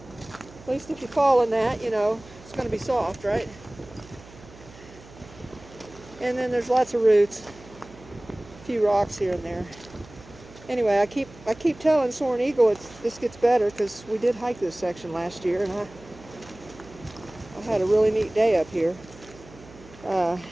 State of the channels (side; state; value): right; noise; hum, 21 dB below the sound